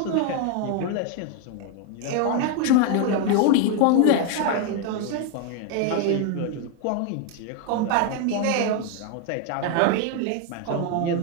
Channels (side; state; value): both; different; correlation 0.01